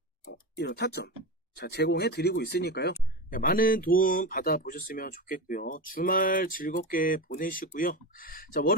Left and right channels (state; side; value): normal; both; correlation 0.22